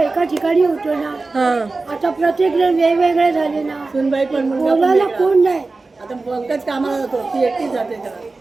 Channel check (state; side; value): quieter; left; 3.6 dB